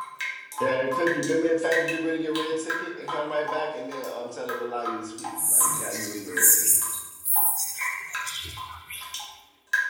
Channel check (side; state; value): both; identical; correlation 1.00